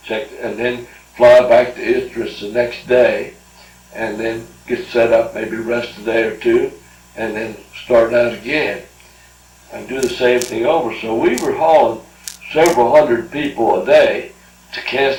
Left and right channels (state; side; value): identical; both; correlation 1.00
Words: checked, and then fly back to Idris the next day, and then get set up, maybe rest a day or two, and then start out again and do the same thing over. So we were hauling several hundred people a day to